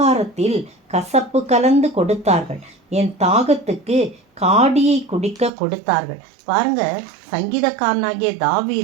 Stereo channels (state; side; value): drops out; left; at 5.5 s